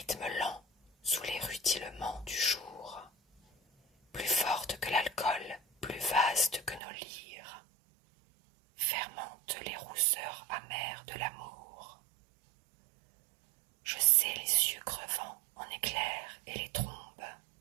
lent sous les rutilements du jour, plus forte que l'alcool, plus vaste que nos lyres, fermente les rousseurs amères de l'amour. Je sais les cieux crevant en éclairs et les trombes,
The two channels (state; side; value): drops out; left; at 6.8 s